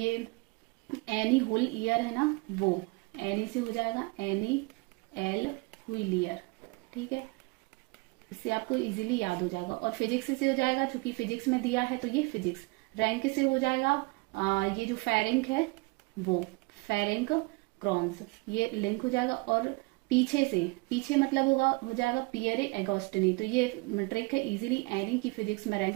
एनी हुल ईयर है ना, वो एनी से हो जाएगा एनी एल व्हीलियर। ठीक है, इससे आपको इजीली याद हो जाएगा। और फिजिक्स से हो जाएगा चूंकि फिजिक्स में दिया है तो ये फिजिक्स। रैंक से हो जाएगा ये जो फेरेंक है वो फेरेंक क्रॉन्स, ये लिंक हो जाएगा। और पीछे मतलब हो जाएगा पियरे एगोस्टिनी। तो ये ट्रिक है इजीली एनी की फिजिक्स में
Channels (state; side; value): quieter; left; 26.7 dB